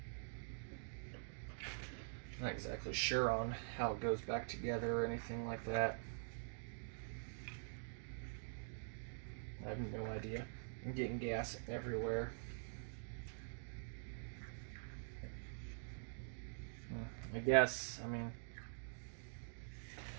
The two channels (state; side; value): silent; left; digital silence